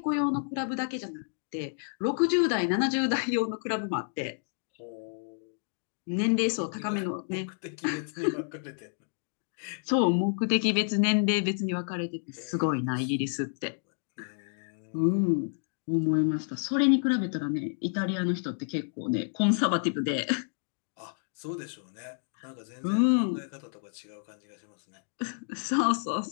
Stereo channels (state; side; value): silent; right; digital silence